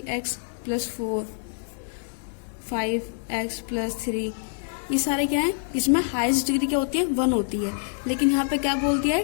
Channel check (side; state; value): right; silent; 61 dB below the other